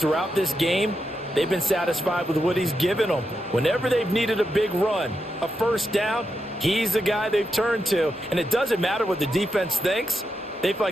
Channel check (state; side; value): normal; both; correlation 0.85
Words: this game, they've been satisfied with what he's given them. Whenever they've needed a big run, a 1st down, he's the guy they've turned to, and it doesn't matter what the defense thinks. They feel